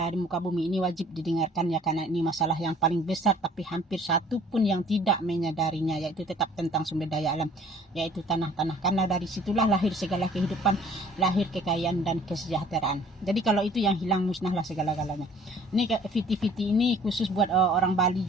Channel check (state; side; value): normal; both; correlation 0.54